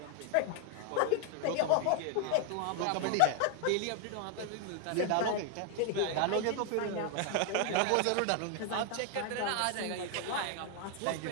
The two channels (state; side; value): different; both; correlation 0.00